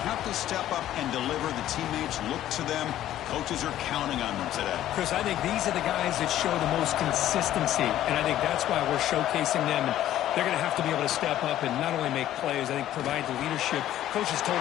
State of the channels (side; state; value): right; quieter; 12.7 dB